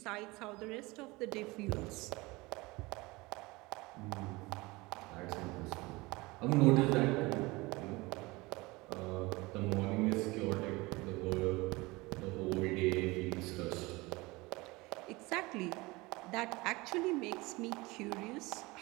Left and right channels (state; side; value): quieter; left; 22.8 dB